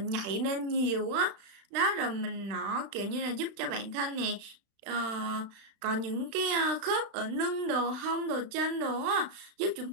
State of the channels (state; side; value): late; left; 35 ms